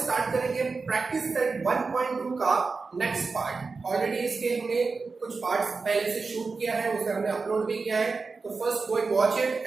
स्टार्ट करेंगे प्रैक्टिस सेट 1.2 का नेक्स्ट पार्ट। ऑलरेडी इसके हमने कुछ पार्ट्स पहले से शूट किया है, उसे हमने अपलोड भी किया है। तो first go and watch it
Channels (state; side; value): quieter; left; 4.3 dB